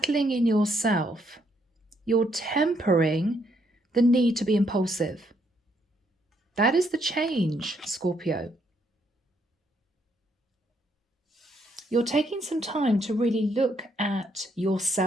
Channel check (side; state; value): both; normal; correlation 0.73